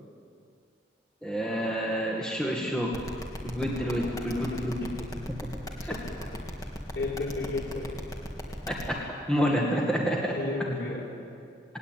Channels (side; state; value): both; normal; correlation 0.68